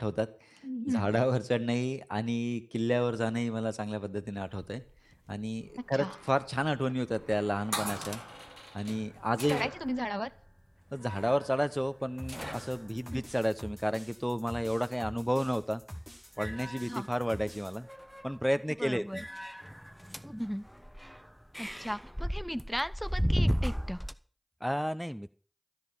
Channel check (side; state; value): both; identical; correlation 1.00